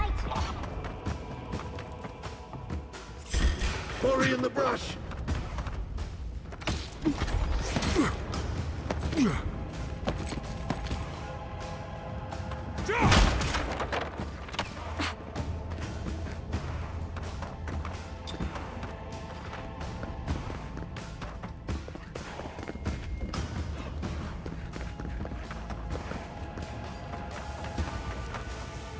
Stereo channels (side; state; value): both; identical; correlation 1.00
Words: Quarry in the brush!